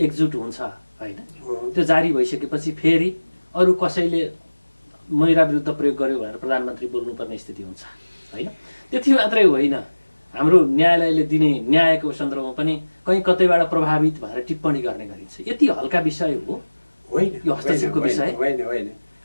एकजुट हुन्छ होइन, त्यो जारी भइसकेपछि फेरि अरू कसैले महिला विरुद्ध प्रयोग गर्यो भनेर प्रधानमन्त्री बोल्नुपर्ने स्थिति हुन्छ होइन। त्यति मात्रै होइन, हाम्रो न्यायालयले दिने न्यायको सन्दर्भमा पनि कहीँ कतैबाट प्रभावित भएर टिप्पणी गर्ने गरिन्छ। यति हल्का विषय हो होइन यो हस्तक्षेपको विषय? होइन।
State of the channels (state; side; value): inverted; both; correlation -1.00